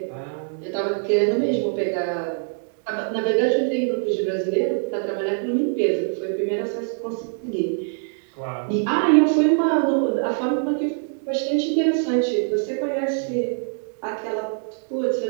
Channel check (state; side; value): silent; left; 63 dB below the other